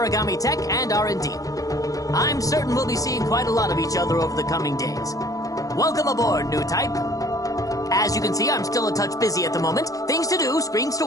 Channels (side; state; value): right; late; 0.17 ms